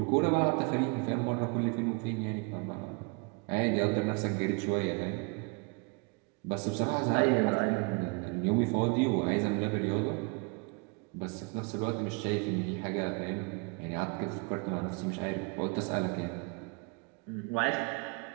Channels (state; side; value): quieter; left; 32.3 dB